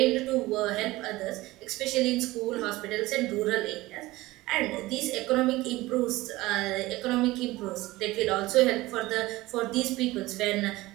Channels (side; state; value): left; quieter; 19.0 dB